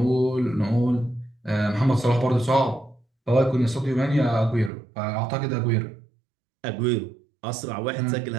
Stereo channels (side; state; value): left; drops out; at 4.7 s